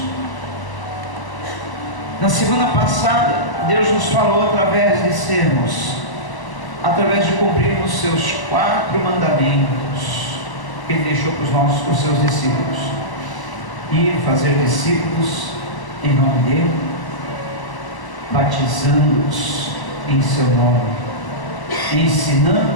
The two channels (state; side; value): late; right; 1.0 ms